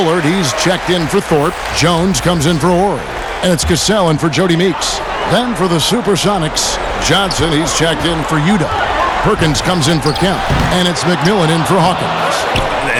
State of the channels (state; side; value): identical; both; correlation 1.00